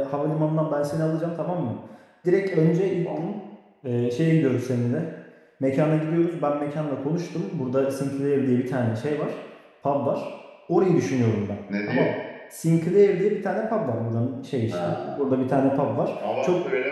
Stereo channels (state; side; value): identical; both; correlation 1.00